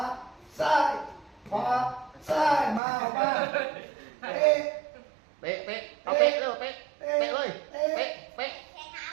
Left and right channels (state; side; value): drops out; left; at 2.8 s